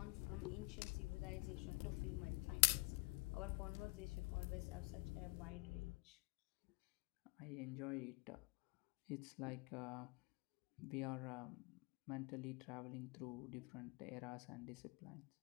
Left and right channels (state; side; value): quieter; right; 27.3 dB